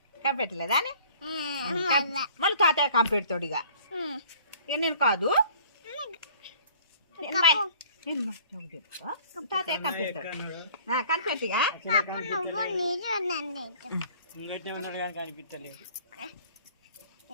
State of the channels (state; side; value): inverted; both; correlation -0.52